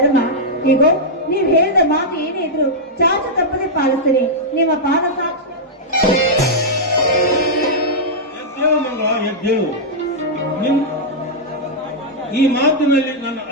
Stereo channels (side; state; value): both; normal; correlation -0.07